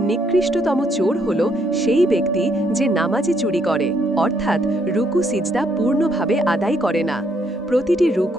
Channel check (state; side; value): normal; both; correlation 0.72